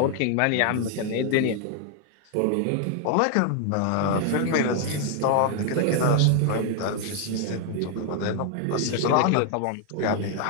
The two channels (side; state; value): both; different; correlation 0.00